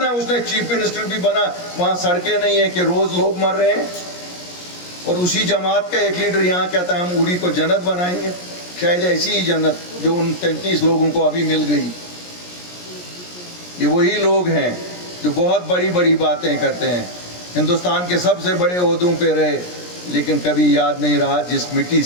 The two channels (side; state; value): right; late; 17 ms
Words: اس نے چیف منسٹر بھی بنا، وہاں سڑکیں نہیں ہیں کہ روز لوگ مر رہے ہیں۔ اور اسی جماعت کا ایک لیڈر یہاں کہتا ہے ہم اوڑی کو جنت بنائیں گے، شاید ایسی ہی جنت جو ان 33 لوگوں کو ابھی مل گئی۔ یہ وہی لوگ ہیں جو بہت بڑی بڑی باتیں کرتے ہیں، ہندوستان کے سب سے بڑے عہدوں پہ رہے، لیکن کبھی یاد نہیں رہا جس مٹی